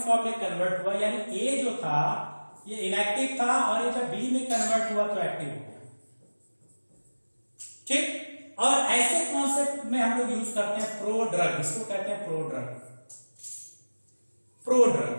में कन्वर्ट हुआ, यानी ए जो था ये इनएक्टिव था और ये जब बी में कन्वर्ट हुआ तो एक्टिव हो गया। ठीक, और ऐसे कॉन्सेप्ट में हम लोग यूज करते हैं प्रो ड्रग, इसको कहते हैं pro drug. Pro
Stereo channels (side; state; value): both; inverted; correlation -1.00